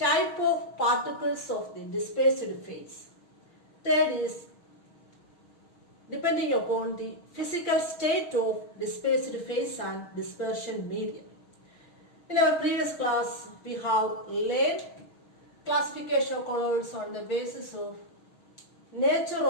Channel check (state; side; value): late; right; 6.3 ms